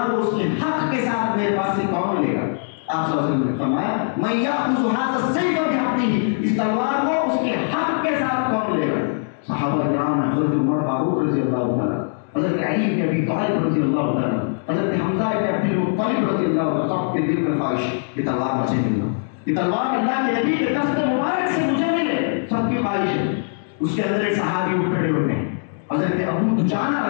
کو اس کے حق کے ساتھ میرے پاس سے کون لے گا؟ آپ صلی اللہ علیہ وسلم نے فرمایا من یأخذ هذا السیف بحقه، اس تلوار کو اس کے حق کے ساتھ کون لے گا؟ صحابہ کرام، حضرت عمر فاروق رضی اللہ تعالیٰ، حضرت علی بن ابی طالب رضی اللہ تعالیٰ، حضرت حمزہ بن عبد المطلب رضی اللہ تعالیٰ، سب کے دل میں خواہش یہ تلوار مجھے ملنا، یہ تلوار اللہ کے نبی کے دست مبارک سے مجھے ملے، سب کی خواہش ہے. اس کے اندر ایک صحابی اٹھ کھڑے ہوتے ہیں، حضرت ابو دجانہ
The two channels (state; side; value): silent; right; digital silence